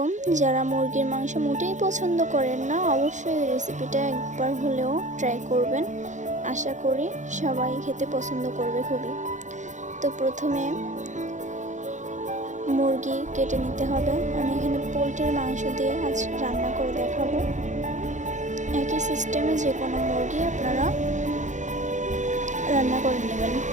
যারা মুরগির মাংস মোটেই পছন্দ করেন না, অবশ্যই এই রেসিপিটা একবার হলেও ট্রাই করবেন। আশা করি সবাই খেতে পছন্দ করবে খুবই। তো প্রথমে মুরগি কেটে নিতে হবে। আমি এখানে পোলট্রির মাংস দিয়ে আজ রান্না করে দেখাবো। একই সিস্টেমে যে কোনো মুরগি আপনারা রান্না করে নেবেন।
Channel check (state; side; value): late; left; 0.35 ms